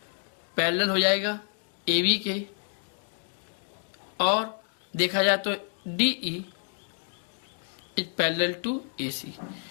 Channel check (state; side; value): silent; right; 59 dB below the other